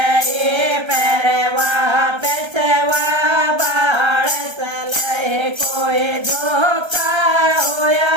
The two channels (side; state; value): left; late; 1.3 ms